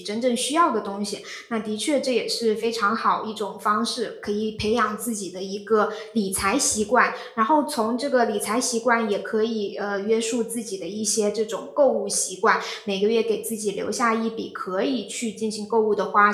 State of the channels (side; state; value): both; identical; correlation 1.00